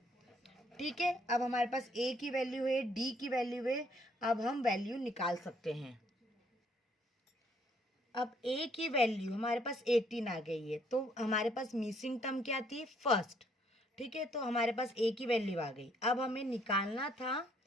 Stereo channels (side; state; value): both; normal; correlation 0.67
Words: ठीक है, अब हमारे पास a की वैल्यू है, d की वैल्यू है, अब हम वैल्यू निकाल सकते हैं। अब a की वैल्यू हमारे पास 18 आ गई है, तो हमारे पास मिसिंग टर्म क्या थी, फर्स्ट। ठीक है, तो हमारे पास a की वैल्यू आ गई। अब हमें निकालना था